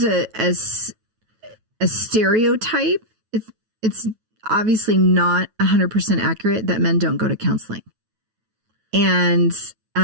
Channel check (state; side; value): late; left; 9.2 ms